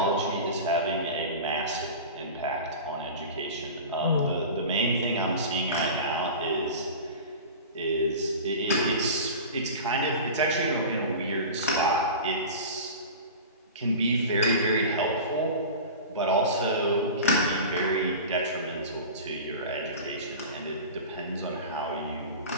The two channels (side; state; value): both; inverted; correlation -0.33